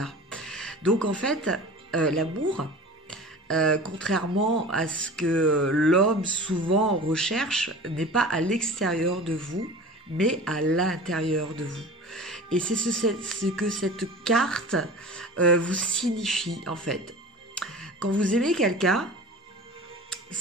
Donc en fait, l'amour, contrairement à ce que l'homme souvent recherche, n'est pas à l'extérieur de vous, mais à l'intérieur de vous. Et c'est ce que cette carte vous signifie, en fait. Quand vous aimez quelqu'un,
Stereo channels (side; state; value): both; normal; correlation 0.38